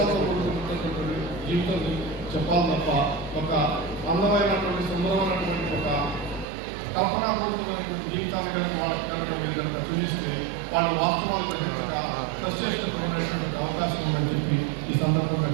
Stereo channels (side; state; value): left; drops out; at 6.5 s